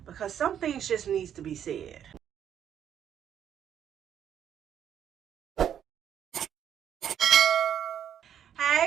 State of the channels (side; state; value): left; quieter; 9.4 dB